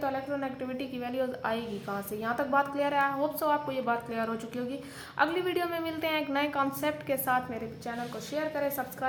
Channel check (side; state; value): both; identical; correlation 1.00